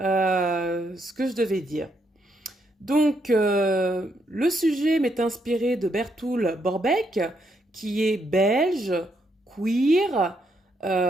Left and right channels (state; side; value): normal; both; correlation 0.76